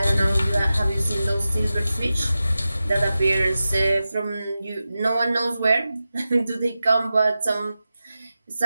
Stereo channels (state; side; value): inverted; both; correlation -0.93